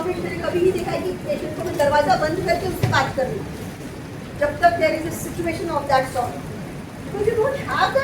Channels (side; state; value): both; identical; correlation 1.00